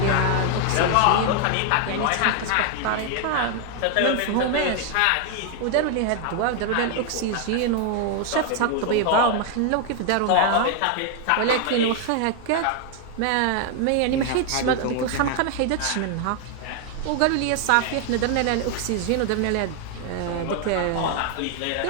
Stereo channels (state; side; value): different; both; correlation 0.00